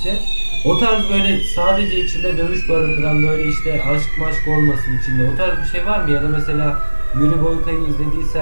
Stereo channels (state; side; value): inverted; both; correlation -1.00